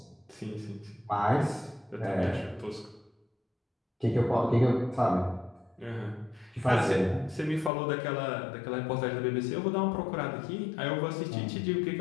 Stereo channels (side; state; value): right; drops out; at 7.7 s